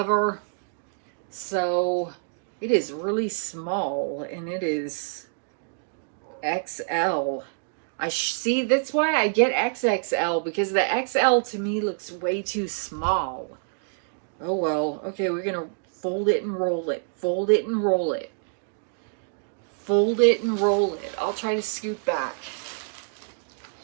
So it is really small, and it is XL. See, that's why I get XXL, because the XL to me looks way too small. Oh well. Okay, we're gonna fold it and roll it. Fold it and roll it. Fold it and roll it. I'll try to scoot back.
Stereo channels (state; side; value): silent; left; digital silence